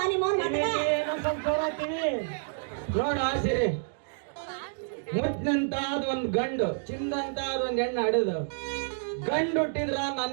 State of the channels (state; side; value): silent; left; digital silence